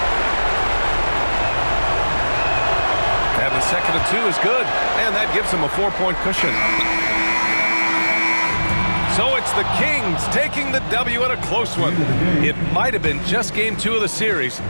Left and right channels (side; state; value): both; inverted; correlation -1.00